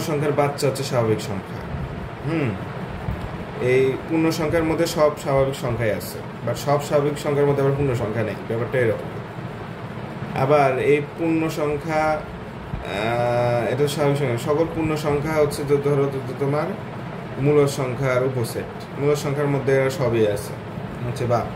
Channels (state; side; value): identical; both; correlation 1.00